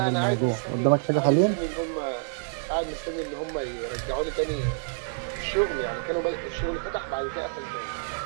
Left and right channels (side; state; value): left; silent; 60 dB below the other